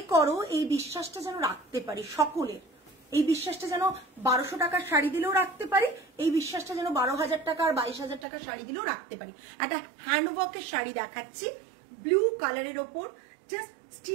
করো, এই বিশ্বাসটা যেন রাখতে পারি সকলের, এই বিশ্বাসটা যেন 1200 টাকার শাড়ি দিলেও রাখতে পারি, এই বিশ্বাসটা যেন 12,000 টাকা আর 22,000 টাকার শাড়ি দিলেও রাখতে পারি। একটা হ্যান্ডওয়ার্কের শাড়ি দেখাচ্ছি ব্লু কালারের ওপর, জাস্ট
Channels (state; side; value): drops out; left; at 8.2 s